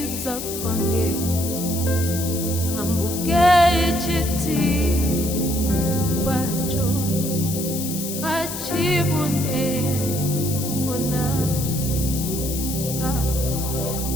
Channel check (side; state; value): left; noise; hiss, 6 dB below the sound